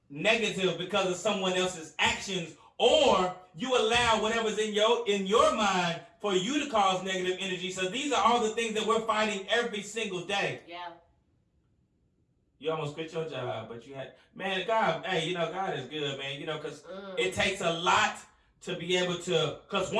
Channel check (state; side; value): identical; both; correlation 1.00